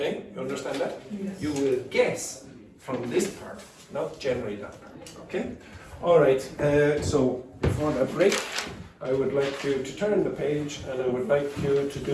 You understand that? Yes. You will guess from this part, not generally that part. Okay? Alright, so before the break, I would like you to turn the page and I would like you to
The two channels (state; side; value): identical; both; correlation 1.00